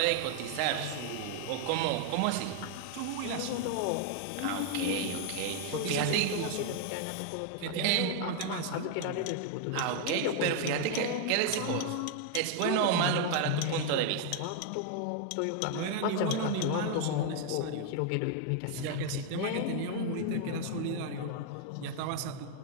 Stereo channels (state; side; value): different; both; correlation 0.00